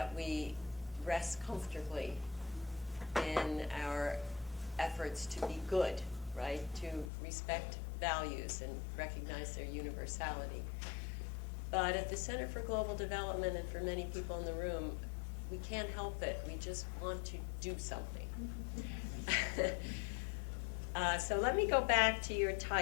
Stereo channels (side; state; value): right; drops out; at 7.1 s